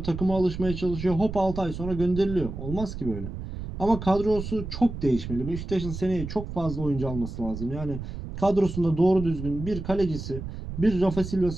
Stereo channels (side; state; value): right; noise; rumble, 8 dB below the sound